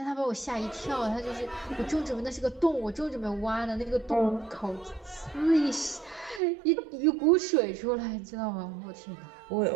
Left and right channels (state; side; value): drops out; left; at 6.4 s